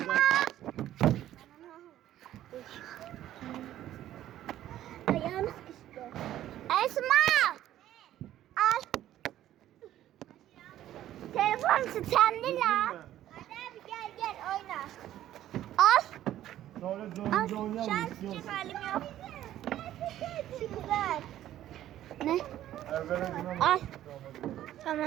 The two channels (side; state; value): left; quieter; 12.7 dB